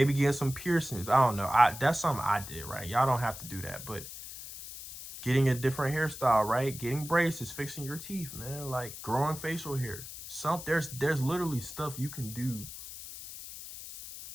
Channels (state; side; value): noise; left; hiss, 12 dB below the sound